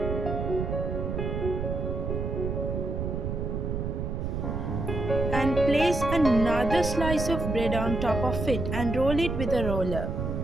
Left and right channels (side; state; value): right; noise; rumble, 2 dB below the sound